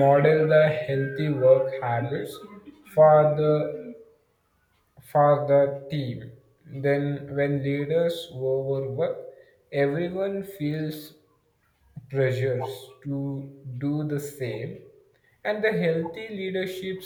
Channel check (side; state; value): both; identical; correlation 1.00